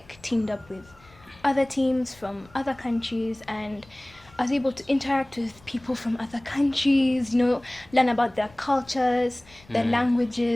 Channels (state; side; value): noise; left; rumble, 26 dB below the sound